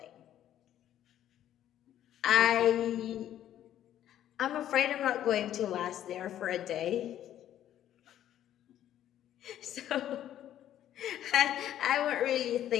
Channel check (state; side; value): quieter; right; 11.5 dB